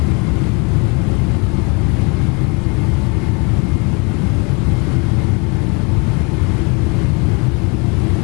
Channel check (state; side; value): quieter; right; 31.1 dB